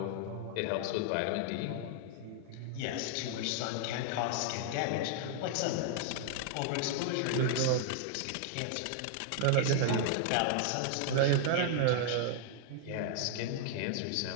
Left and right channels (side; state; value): both; different; correlation 0.00